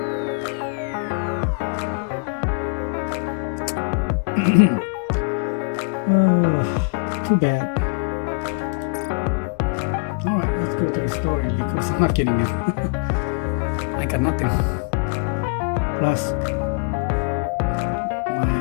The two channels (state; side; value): quieter; right; 39.0 dB